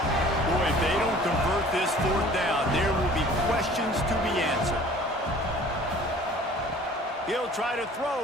if they don't convert this fourth down, there will be questions to be answered. He'll try to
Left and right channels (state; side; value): normal; both; correlation 0.49